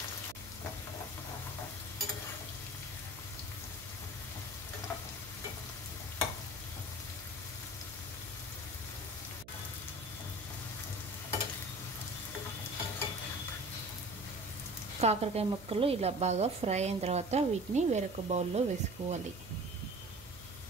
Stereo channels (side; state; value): right; noise; hum, 18 dB below the sound